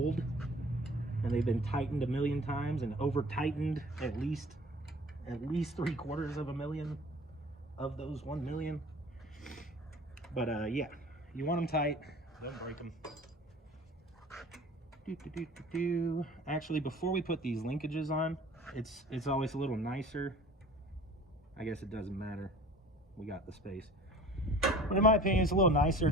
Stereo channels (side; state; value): both; normal; correlation 0.45